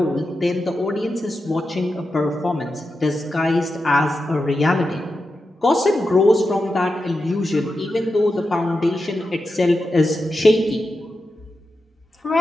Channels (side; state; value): both; normal; correlation 0.90